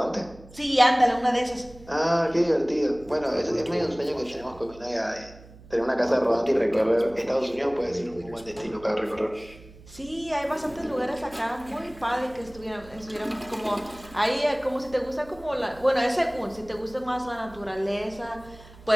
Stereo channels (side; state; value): right; noise; hum, 21 dB below the sound